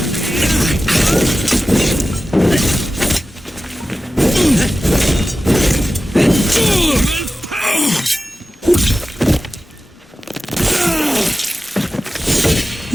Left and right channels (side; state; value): both; normal; correlation 0.94